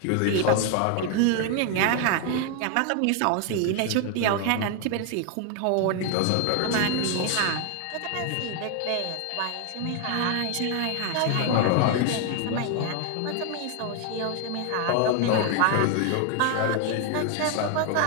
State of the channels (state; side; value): different; both; correlation 0.00